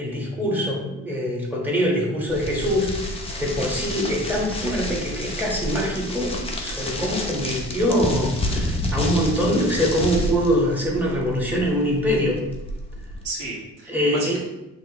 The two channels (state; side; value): normal; both; correlation 0.44